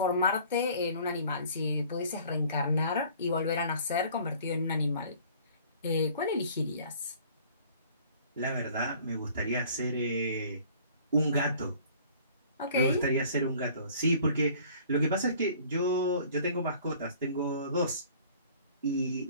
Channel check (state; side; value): inverted; both; correlation -0.52